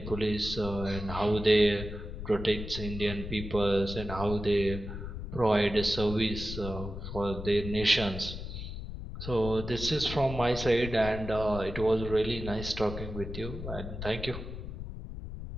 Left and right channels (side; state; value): left; noise; rumble, 8 dB below the sound